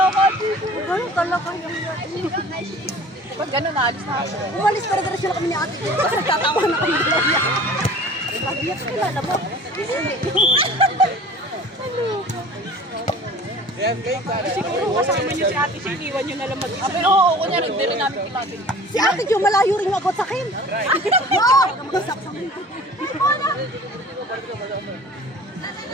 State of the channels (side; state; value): both; normal; correlation 0.44